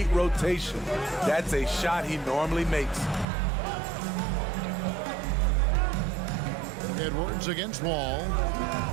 rotation. That's a shot he normally makes. Edwards against Wall.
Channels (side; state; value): left; drops out; at 3.2 s